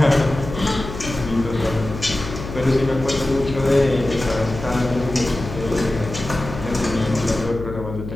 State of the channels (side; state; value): left; noise; hum, 10 dB below the sound